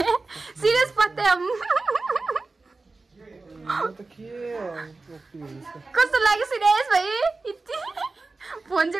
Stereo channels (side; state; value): left; quieter; 3.6 dB